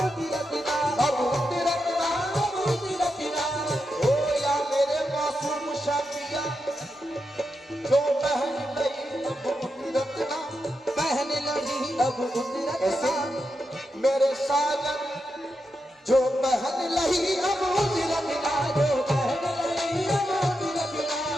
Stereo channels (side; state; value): both; normal; correlation 0.86